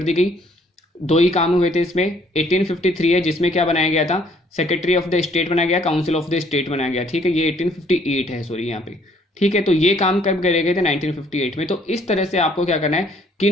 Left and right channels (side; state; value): both; normal; correlation 0.63